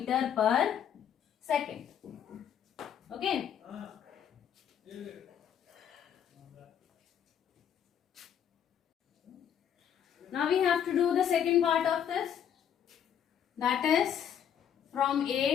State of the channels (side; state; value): right; quieter; 9.0 dB